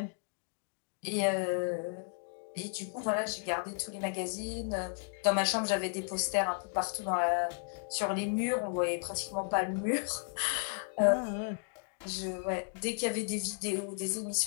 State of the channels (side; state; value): right; silent; 55 dB below the other